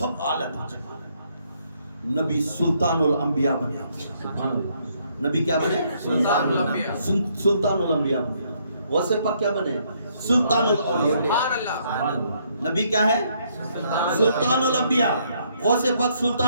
اعلیٰ درجے کا نبی سلطان الانبیاء بنے نبی کیا بنے سلطان الانبیاء بنے غوث پاک کیا بنے سلطان الاولیاء نبی کیا ہے سلطان الانبیاء غوث پاک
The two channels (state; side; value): inverted; both; correlation -0.70